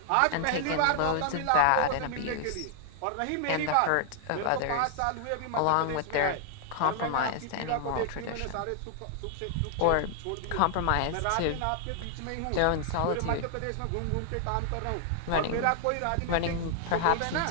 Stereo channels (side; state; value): both; different; correlation 0.00